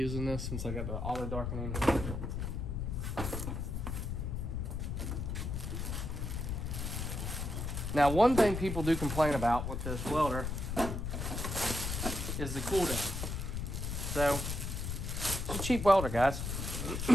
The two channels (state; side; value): noise; left; rumble, 3 dB below the sound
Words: this since I got the auto darkening. Now, one thing people do complain about with this welder is the cool down. So, it's a cheap welder, guys.